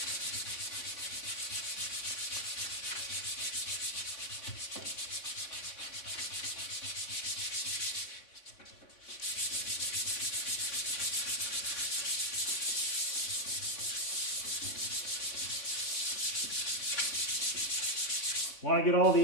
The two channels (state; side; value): late; right; 3.8 ms